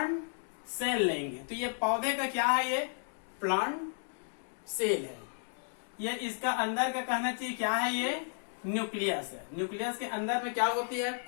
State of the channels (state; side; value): silent; right; digital silence